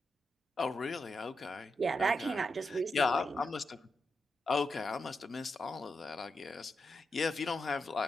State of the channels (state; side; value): normal; both; correlation 0.86